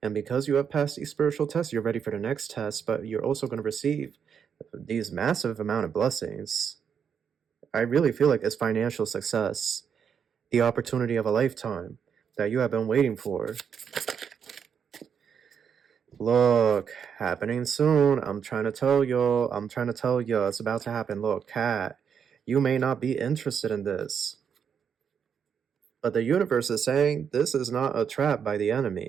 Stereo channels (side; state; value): left; quieter; 7.3 dB